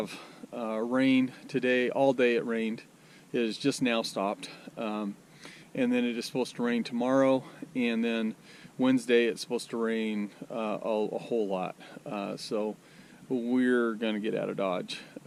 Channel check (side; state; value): both; identical; correlation 1.00